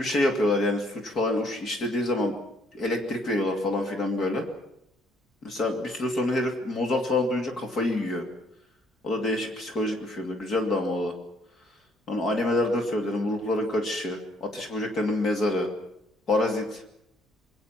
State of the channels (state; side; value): normal; both; correlation 0.65